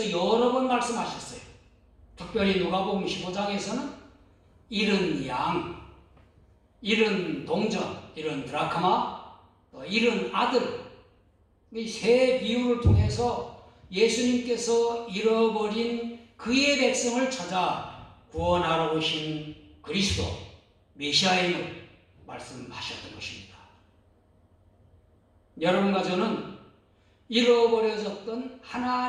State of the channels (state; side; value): identical; both; correlation 1.00